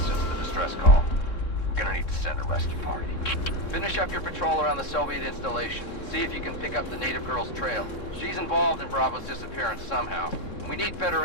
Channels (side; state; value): right; late; 3.6 ms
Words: since the distress call. We're gonna need to send a rescue party. Finish up your patrol around the Soviet installation. See if you can pick up the native girl's trail. She's involved in Bravo's disappearance somehow. We need better